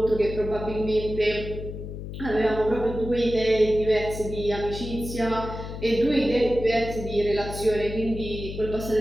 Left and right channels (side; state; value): left; noise; hum, 8 dB below the sound